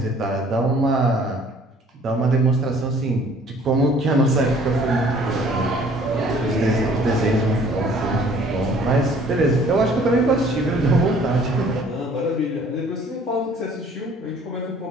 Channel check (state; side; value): normal; both; correlation 0.55